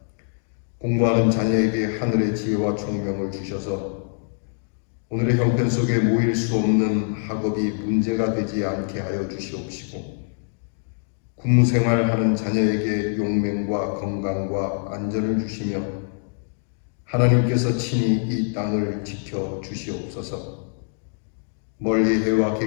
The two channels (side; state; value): right; silent; 63 dB below the other